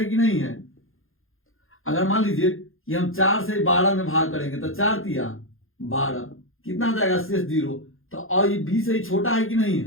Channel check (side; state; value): right; late; 0.60 ms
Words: कि नहीं है। अगर मान लीजिए कि हम 4 से 12 में भाग करेंगे तो 4 तिया 12, कितना आ जाएगा शेष 0, तो और ये b से ही छोटा है कि नहीं